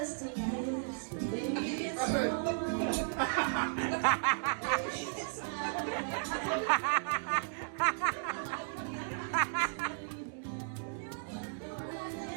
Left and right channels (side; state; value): left; silent; digital silence